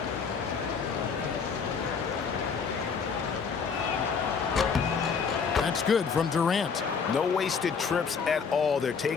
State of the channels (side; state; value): right; quieter; 5.9 dB